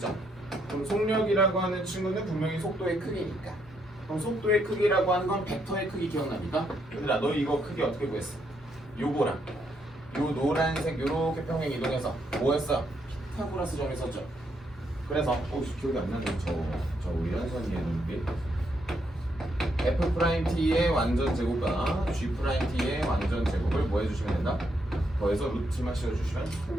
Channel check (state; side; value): normal; both; correlation 0.76